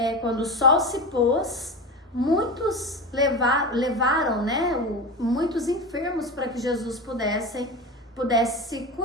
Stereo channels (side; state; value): both; normal; correlation 0.24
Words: quando o sol se pôs, muitos levaram, muitos enfermos para que Jesus pudesse